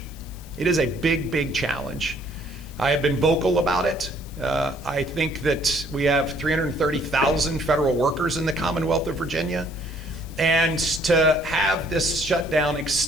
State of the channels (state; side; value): noise; left; hiss, 22 dB below the sound